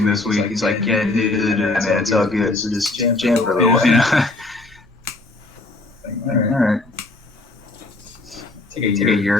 this week. He's like, yeah, dude, man, it's all good. So just jam for a little while, All right. Take a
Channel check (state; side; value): quieter; right; 3.0 dB